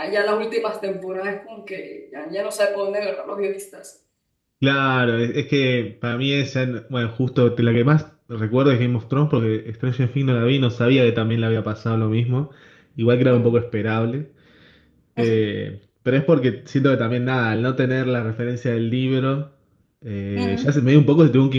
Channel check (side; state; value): both; identical; correlation 1.00